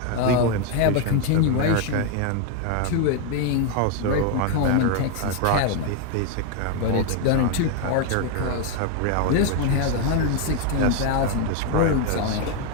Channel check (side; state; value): both; different; correlation 0.01